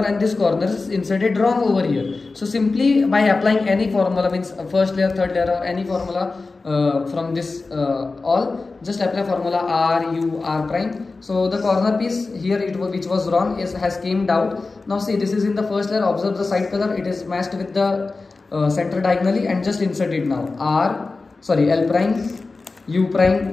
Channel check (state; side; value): quieter; right; 3.8 dB